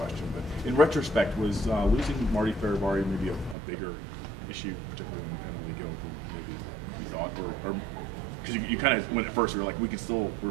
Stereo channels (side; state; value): left; drops out; at 3.6 s